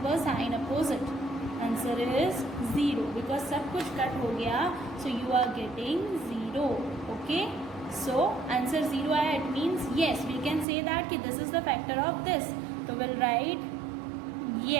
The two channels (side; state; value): left; drops out; at 10.7 s